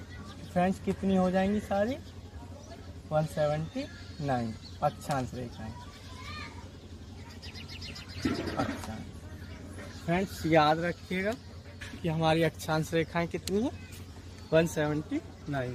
फ्रेंड्स कितनी हो जाएंगी सारी, 179 अक्षांश रेखाएं। अक्षांश फ्रेंड्स याद रखिएगा कि हमारी अक्षांश रेखाएं कितनी है, 179।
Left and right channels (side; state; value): both; identical; correlation 1.00